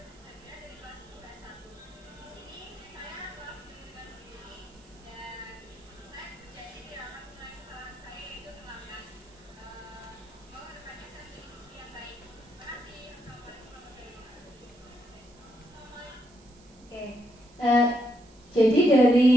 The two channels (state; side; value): noise; right; hiss, 27 dB below the sound